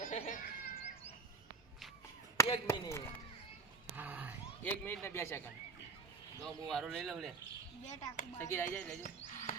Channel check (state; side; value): quieter; left; 4.5 dB